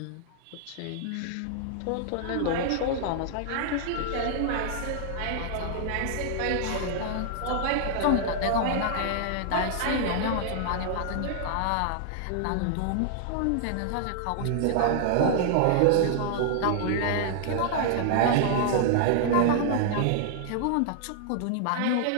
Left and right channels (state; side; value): different; both; correlation -0.01